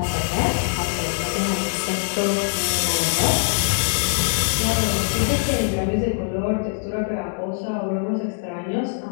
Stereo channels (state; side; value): silent; right; 64 dB below the other